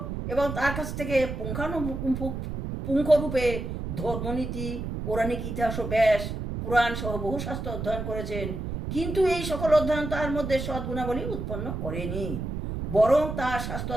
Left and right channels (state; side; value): noise; right; rumble, 5 dB below the sound